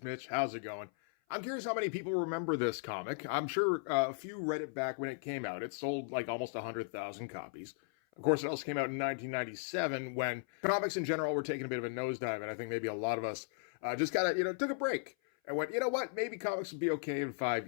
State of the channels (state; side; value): silent; right; 54 dB below the other